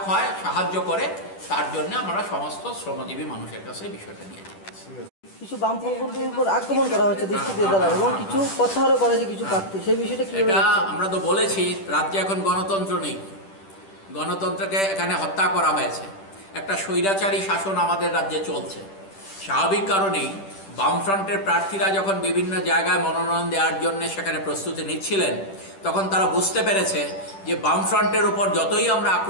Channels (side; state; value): right; late; 10 ms